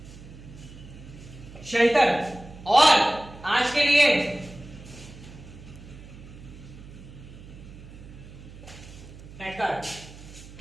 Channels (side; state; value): right; noise; hum, 17 dB below the sound